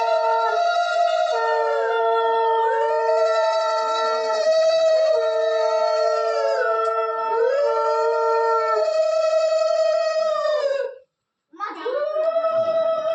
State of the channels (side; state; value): both; identical; correlation 1.00